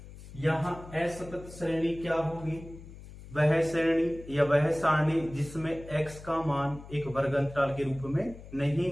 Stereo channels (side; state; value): left; noise; hum, 16 dB below the sound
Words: यहां असतत श्रेणी क्या होगी, वह श्रेणी या वह सारणी जिसमें x का मान एक वर्ग अंतराल के रूप में